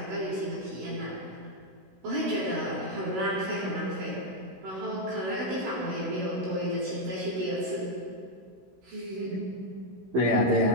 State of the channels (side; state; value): left; late; 16 ms